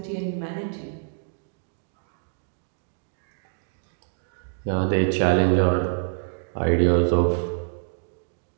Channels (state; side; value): silent; left; digital silence